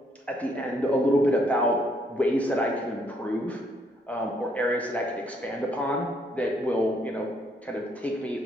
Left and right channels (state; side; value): normal; both; correlation 0.70